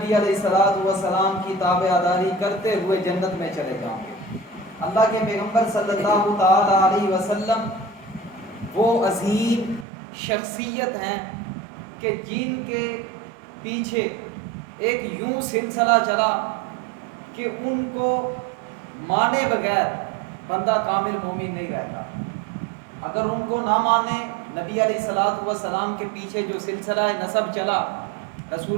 علیہ الصلوۃ والسلام کی تابعداری کرتے ہوئے جنت میں چلے جاؤ گے۔ اللہ کے پیغمبر صلی اللہ تعالی علیہ وسلم وہ عظیم شخصیت ہیں کہ جن کے پیچھے ایک یوں سلسلہ چلا کہ ان کو مانے بغیر بندہ کامل مومن نہیں رہتا۔ اگر ان کو نہ مانے، نبی علیہ الصلوۃ والسلام کے پیچھے جو سلسلہ نسب چلا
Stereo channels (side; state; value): left; drops out; at 9.9 s